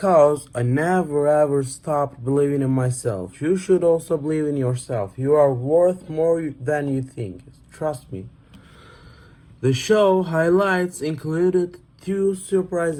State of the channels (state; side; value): identical; both; correlation 1.00